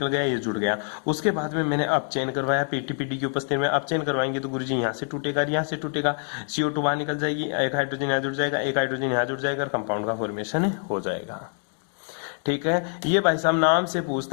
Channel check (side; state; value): right; silent; 57 dB below the other